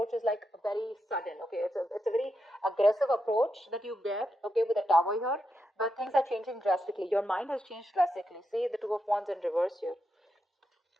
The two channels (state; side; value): normal; both; correlation 0.85